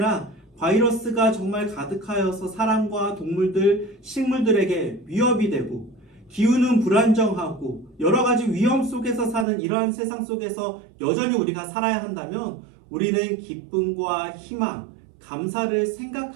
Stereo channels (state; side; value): drops out; left; at 9.5 s